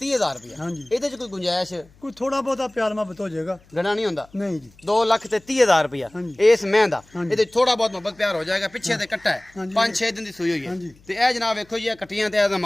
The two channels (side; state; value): left; noise; hum, 29 dB below the sound